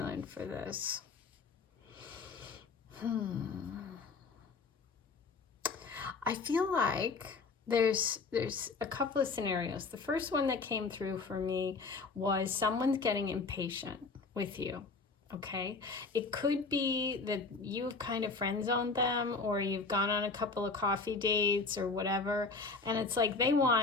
for this. I feel like there's a couple of scenarios. The first one that came through for me was someone's getting impatient with you. Okay, it could be that you've kind of friend zoned them, or you've gone on a couple of coffee dates or whatever, and it's like they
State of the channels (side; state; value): right; quieter; 4.2 dB